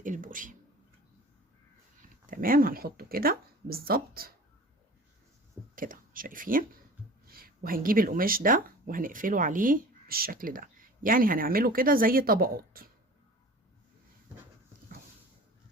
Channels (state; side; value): normal; both; correlation 0.41